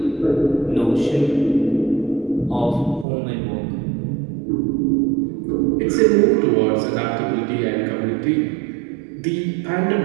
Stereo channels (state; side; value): drops out; left; at 3.1 s